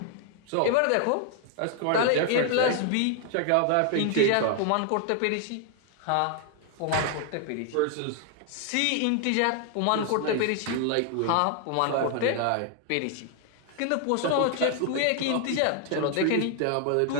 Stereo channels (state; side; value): different; both; correlation 0.00